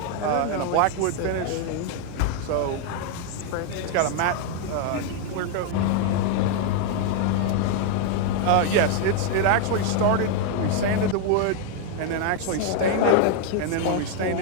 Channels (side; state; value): both; different; correlation 0.00